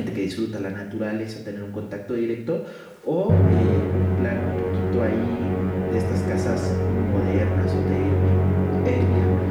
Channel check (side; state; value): both; identical; correlation 1.00